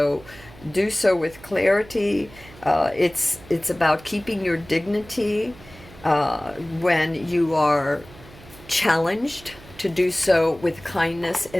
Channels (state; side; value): noise; right; hum, 21 dB below the sound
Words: do so with clarity. It's about keeping your dignity when you are challenged, to do so with kindness